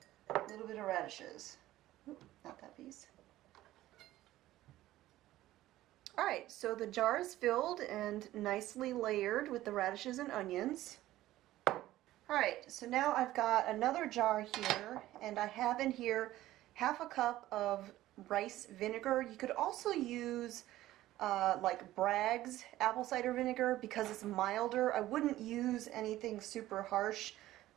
a little bit of radishes. Oop, not that piece. Alright, so the jar is filled and nicely layered with the radishes and onions. Alright, so now I've got another jar here, and I have in here half a cup of rice vinegar. You could also use like Bragg's apple cider vinegar because it's milder. I wouldn't use anything super harsh.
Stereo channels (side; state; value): left; quieter; 15.2 dB